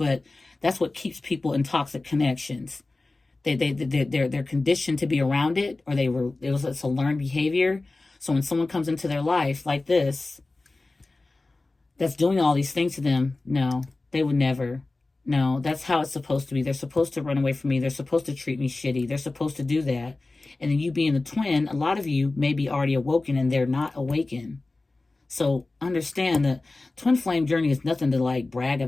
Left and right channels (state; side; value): quieter; right; 3.2 dB